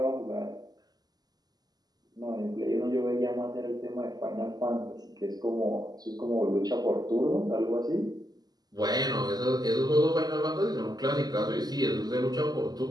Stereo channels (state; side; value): late; left; 0.19 ms